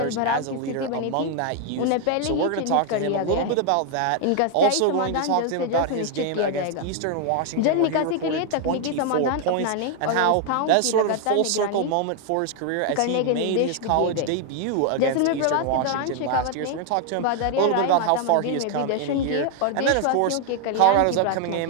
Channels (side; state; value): both; different; correlation 0.00